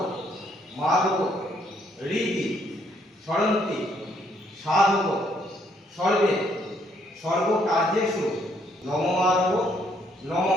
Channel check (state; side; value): normal; both; correlation 0.70